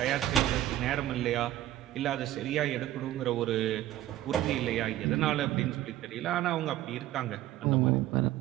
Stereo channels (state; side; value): quieter; left; 14.0 dB